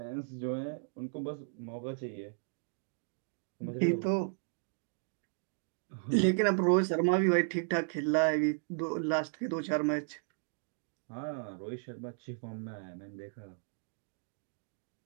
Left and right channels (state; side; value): silent; left; digital silence